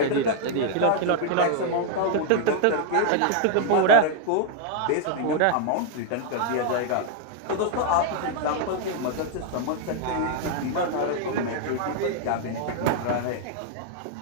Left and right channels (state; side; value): different; both; correlation 0.00